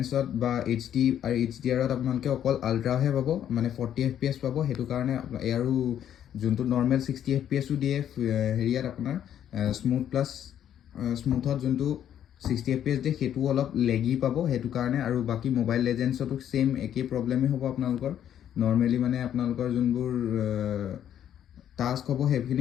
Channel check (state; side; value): quieter; right; 10.2 dB